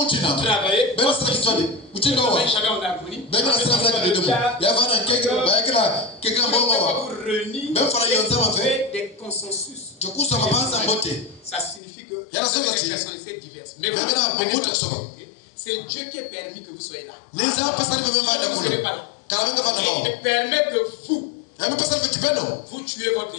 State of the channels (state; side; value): drops out; right; at 11.8 s